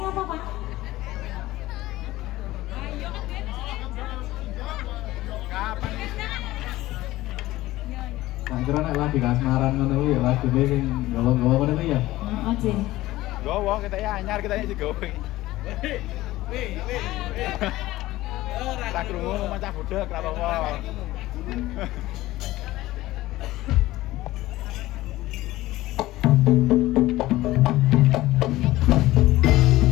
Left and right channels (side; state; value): right; quieter; 17.0 dB